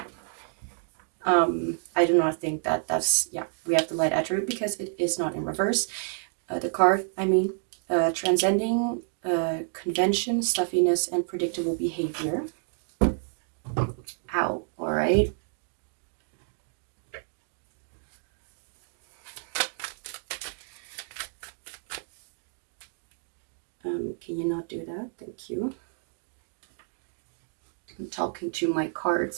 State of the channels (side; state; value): left; silent; 58 dB below the other